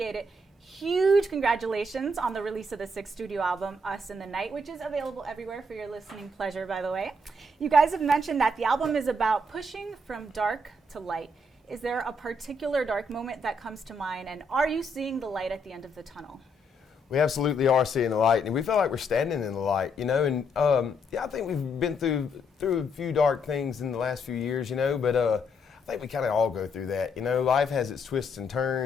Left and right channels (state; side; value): normal; both; correlation 0.74